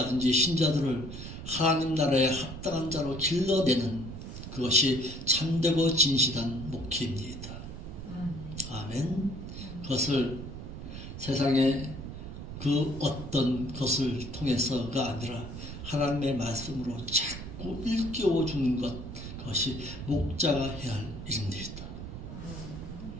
신자들을 하나님 나라에 합당한 자로 길러내는 그것이 참되고 진실한 목회입니다. 아멘. 그것을 세상의 그 어떤 것을 통해서가 아니라 하나님의 말씀으로 자꾸 일깨워 주는 것, 그것이 목자가 해야 할 일입니다.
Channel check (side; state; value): right; noise; rumble, 9 dB below the sound